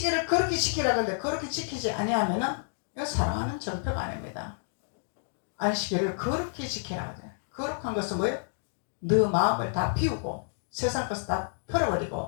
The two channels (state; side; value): silent; right; digital silence